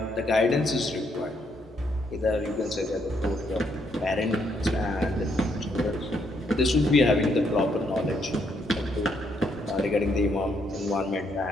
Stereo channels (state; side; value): normal; both; correlation 0.74